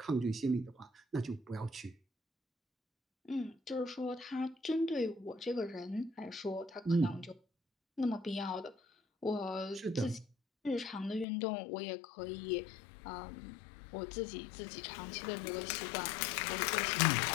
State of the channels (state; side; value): drops out; right; at 11.2 s